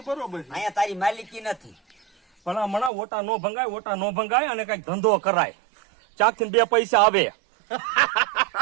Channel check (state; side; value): drops out; left; at 2.9 s